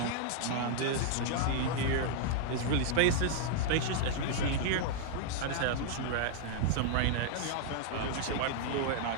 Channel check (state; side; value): different; both; correlation -0.01